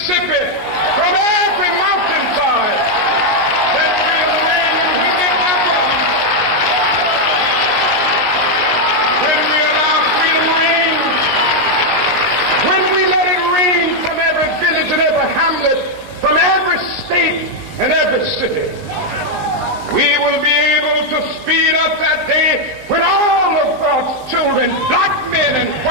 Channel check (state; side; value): late; left; 19 ms